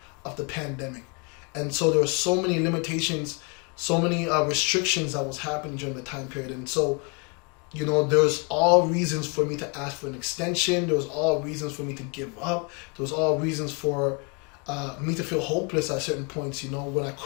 of the pandemic. And so there were so many limitations, so many restrictions that was happening during the time period. And so, you know, there was all reasons for me to ask for an extension. There was all reasons for me to give up. There was all reasons for me to feel hopeless at certain points, you know, when I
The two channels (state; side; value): quieter; right; 33.6 dB